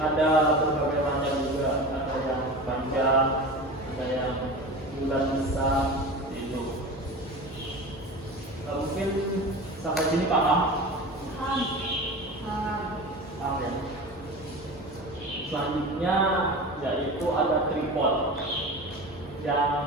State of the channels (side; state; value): both; normal; correlation 0.31